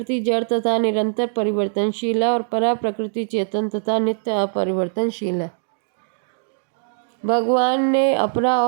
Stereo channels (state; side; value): silent; left; 65 dB below the other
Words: जड़ तथा निरंतर परिवर्तनशील है और परा प्रकृति चेतन तथा नित्य अपरिवर्तनशील है। भगवान ने अपरा